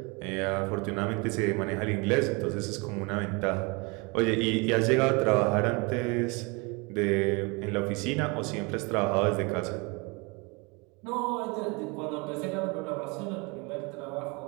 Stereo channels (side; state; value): left; quieter; 29.0 dB